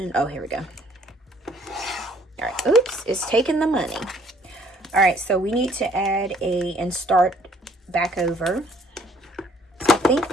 Oh, here we go. All right, oops, it's taking the money. All right, so we need to add and start back over. So I think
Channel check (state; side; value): normal; both; correlation 0.61